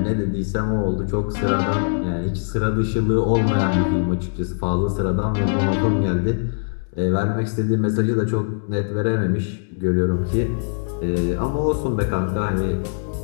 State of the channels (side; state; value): right; silent; digital silence